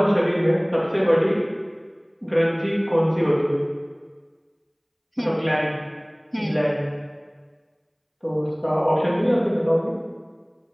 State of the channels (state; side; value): identical; both; correlation 1.00